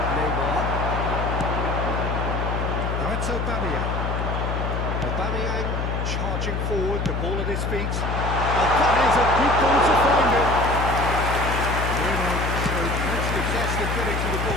Neymar. Now it's Aubameyang. Aubameyang charging forward, the ball at his feet. And that is a good ball to find it. Bruno showed plenty of zest of getting to the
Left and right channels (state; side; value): noise; left; hum, 1 dB below the sound